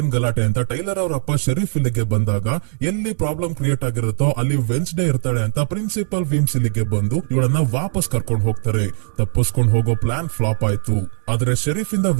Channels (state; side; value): silent; left; digital silence